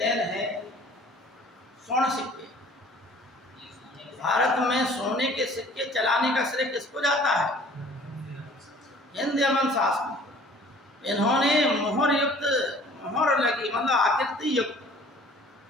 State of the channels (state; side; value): normal; both; correlation 0.52